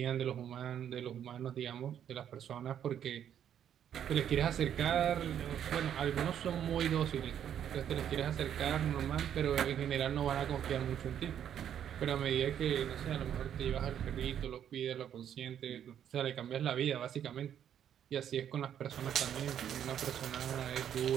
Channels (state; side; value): quieter; left; 9.5 dB